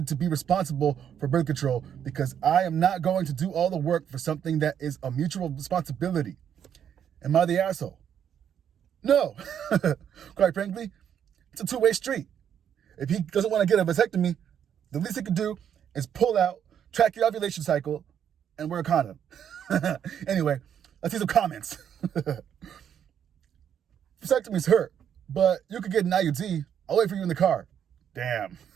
to be responsible for birth control because I am not going to do all the work for something that is a mutual responsibility. Am I the asshole? No. Quite frankly, it's a two-way street. If he doesn't want to get a vasectomy, the least he could do is pull out, track your ovulation cycle, and wear a condom. Anyway, let's see some comments. Vasectomies hurt, but you could get an IUD. I'll wait for you in the car. Damn.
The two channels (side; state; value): left; quieter; 8.9 dB